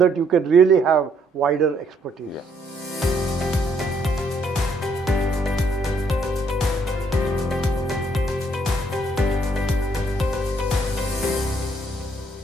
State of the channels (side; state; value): both; normal; correlation 0.69